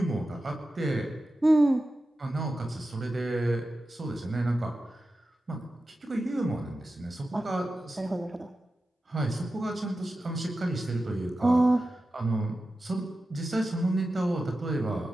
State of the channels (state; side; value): normal; both; correlation 0.93